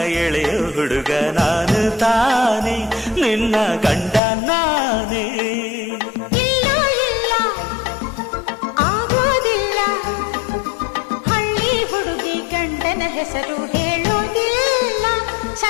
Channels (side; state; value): right; drops out; at 4.2 s